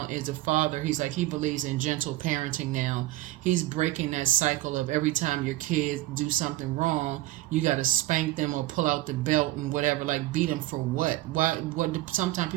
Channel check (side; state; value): left; quieter; 17.3 dB